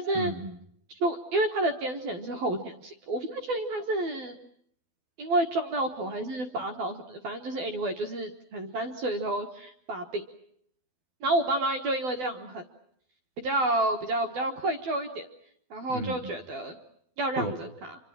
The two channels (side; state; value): left; late; 12 ms